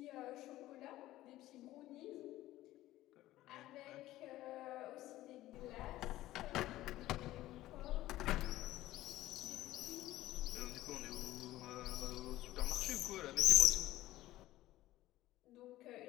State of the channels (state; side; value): quieter; right; 15.7 dB